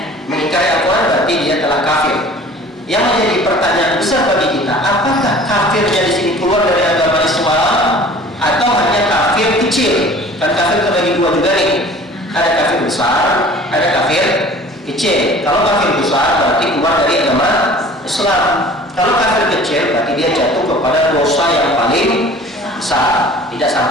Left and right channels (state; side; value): normal; both; correlation 0.46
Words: Mengingkari Al-Quran berarti dia telah kafir. Yang menjadi pertanyaan besar bagi kita, apakah kafirnya di sini keluar dari agama Islam atau hanya kafir kecil? Kan kafir terbagi 2 juga nih. Ada kafir besar, ada kafir kecil. Kalau kafir besar berarti keluar dari agama Islam. Kalau kafir kecil berarti dia jatuh kepada dosa yang paling besar, tidak